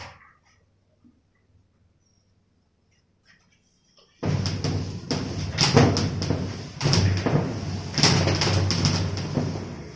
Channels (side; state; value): both; identical; correlation 1.00